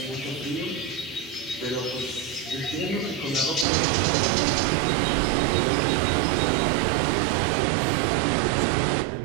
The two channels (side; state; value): left; drops out; at 3.7 s